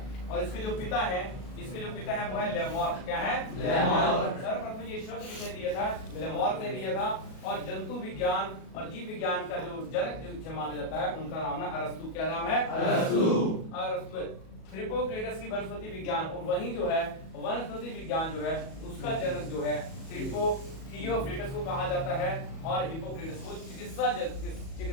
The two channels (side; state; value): right; late; 37 ms